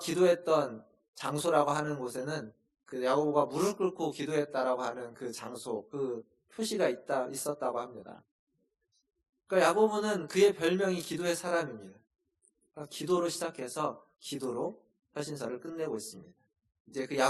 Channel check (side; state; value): both; identical; correlation 1.00